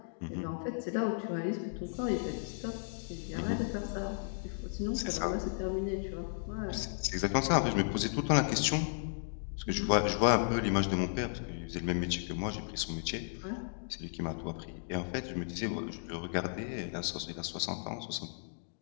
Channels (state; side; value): silent; right; digital silence